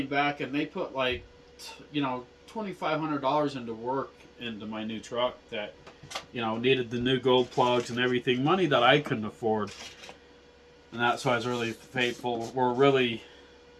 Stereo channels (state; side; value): identical; both; correlation 1.00